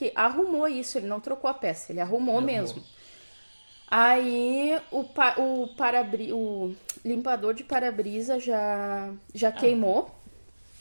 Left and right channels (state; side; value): inverted; both; correlation -1.00